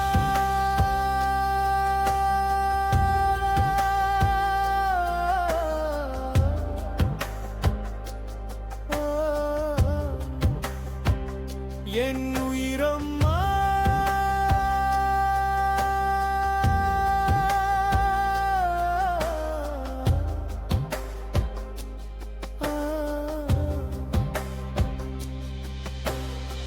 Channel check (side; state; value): both; identical; correlation 1.00